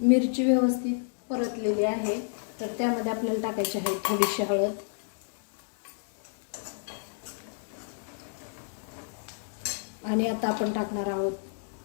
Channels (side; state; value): right; silent; digital silence